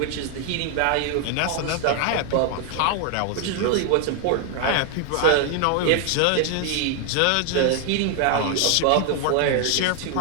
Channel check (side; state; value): both; different; correlation 0.00